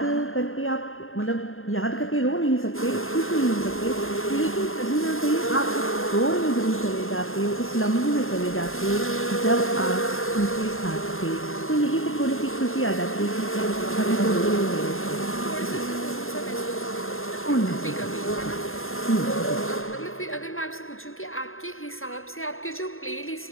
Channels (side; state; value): right; late; 0.60 ms